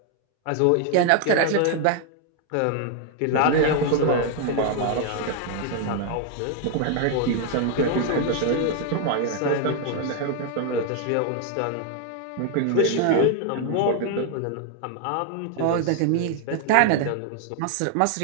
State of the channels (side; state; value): both; different; correlation 0.00